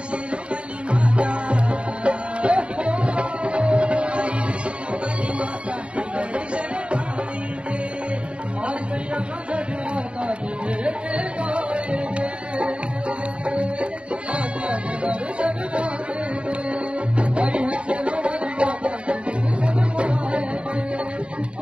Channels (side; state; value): left; late; 0.058 ms